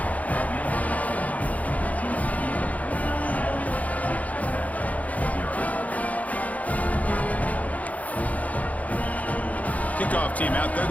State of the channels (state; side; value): late; right; 0.072 ms